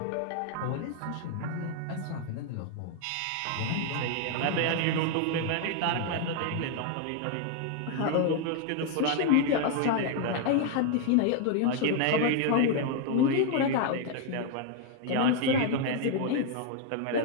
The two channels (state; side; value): different; both; correlation 0.00